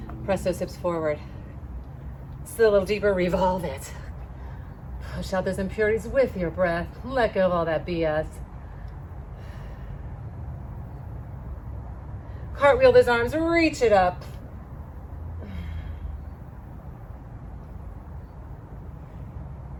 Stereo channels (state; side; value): identical; both; correlation 1.00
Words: Press those hips forward. Sit a little deeper, revolve it. Push out those impurities with your breath. Let go of all that BS. Cartwheel those arms, reach it up.